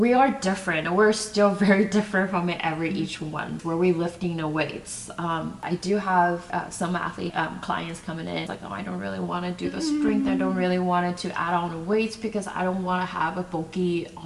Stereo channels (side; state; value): both; identical; correlation 1.00